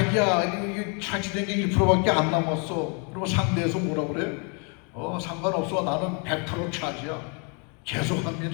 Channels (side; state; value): right; quieter; 36.6 dB